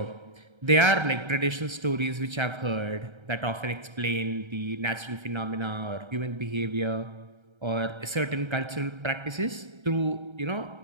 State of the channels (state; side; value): late; left; 1.3 ms